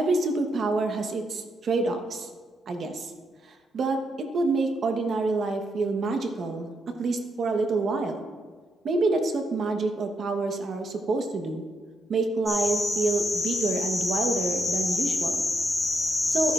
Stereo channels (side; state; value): both; normal; correlation 0.79